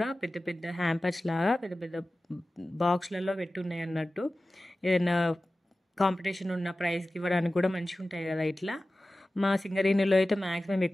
పెద్ద పెద్ద హ్యాంపర్స్ లాగా పెద్ద పెద్ద బాక్స్లలో పెట్టున్నాయి అన్నట్టు. ఏదైనా కాంపిటీషన్ ఉన్న ప్రైజ్కి ఇవ్వడానికి కూడా మంచిగా ఉంటాయి కదా ఇట్లా. మా సింగరేణిలో అయితే మ్యాక్సిమం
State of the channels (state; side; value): normal; both; correlation 0.96